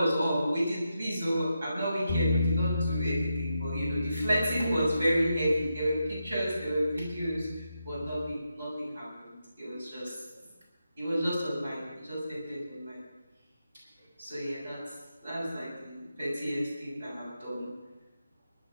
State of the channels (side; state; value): both; inverted; correlation -0.85